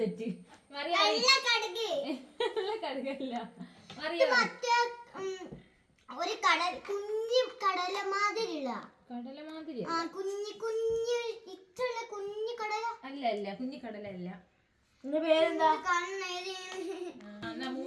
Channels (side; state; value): both; identical; correlation 1.00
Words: മറിയാ കടുക് കടുകല്ല മറിയാ മറ്റേ ഒരു കടൽ കുഞ്ഞു കടല മാതിരിയുള്ള കടല മാതിരി ആ കുഞ്ഞു ഇത്രയുള്ള കുഞ്ഞു കടല അല്ല അല്ല കുഞ്ഞിക്കടല അല്ല എന്റെ പേരെന്താ കണ്ണേരി എന്നാ